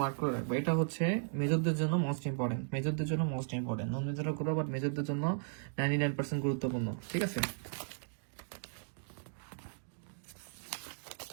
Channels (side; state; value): left; silent; digital silence